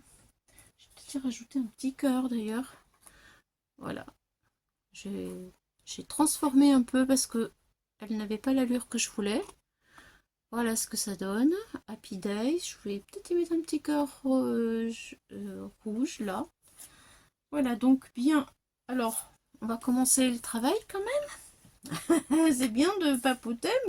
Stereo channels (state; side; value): identical; both; correlation 1.00